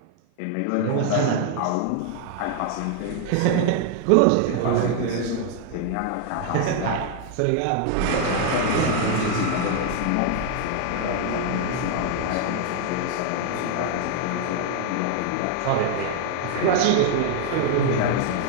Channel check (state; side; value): different; both; correlation 0.00